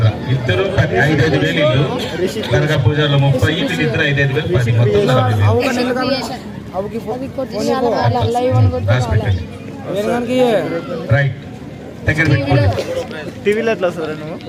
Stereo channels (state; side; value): identical; both; correlation 1.00